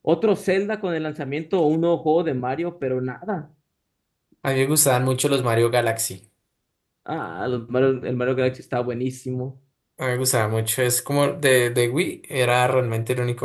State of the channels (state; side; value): identical; both; correlation 1.00